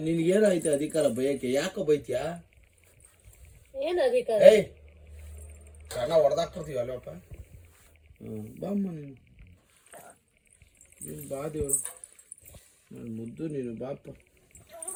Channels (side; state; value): both; identical; correlation 1.00